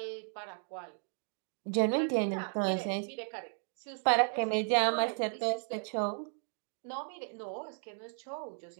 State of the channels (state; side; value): silent; left; 55 dB below the other